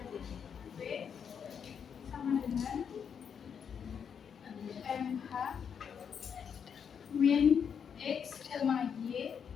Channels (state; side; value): quieter; right; 7.3 dB